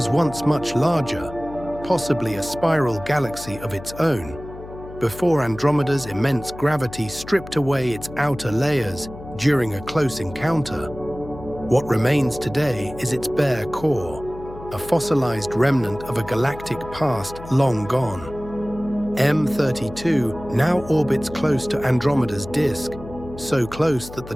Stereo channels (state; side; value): noise; left; hum, 14 dB below the sound